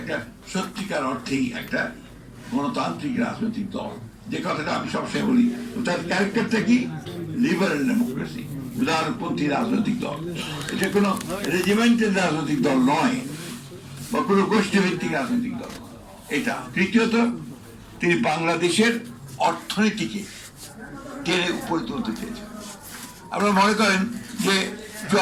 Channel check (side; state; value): both; identical; correlation 1.00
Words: সত্যিকার অর্থেই একটা গণতান্ত্রিক রাজনৈতিক দল, যে কথাটা আমি সবসময় বলি। তার ক্যারেক্টারটা কি? লিবারেল ডেমোক্রেসি, উদারপন্থী রাজনৈতিক দল। এটা কোনো রেজিমেন্টের রাজনৈতিক দল নয় বা কোনো গোষ্ঠীভিত্তিক রাজনৈতিক দল। এটা তৃতীয়ত, তিনি বাংলাদেশের অর্থনীতিকে টেনে উপরে তুলতে চেয়েছেন। আপনারা মনে করেন যে